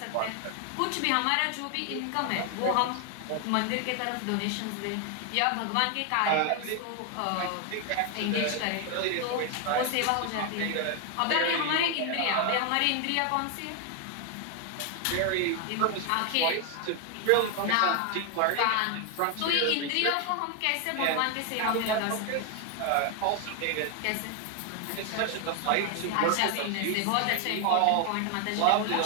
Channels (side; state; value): both; different; correlation 0.01